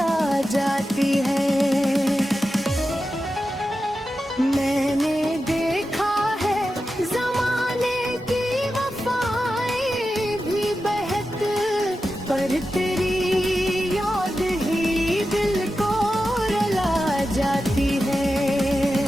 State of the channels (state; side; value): normal; both; correlation 0.91